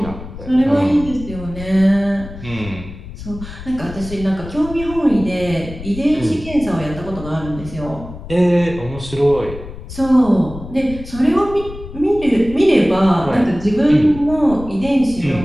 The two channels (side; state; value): left; noise; rumble, 13 dB below the sound